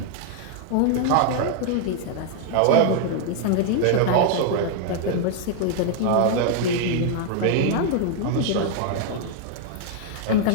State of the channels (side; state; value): both; different; correlation 0.00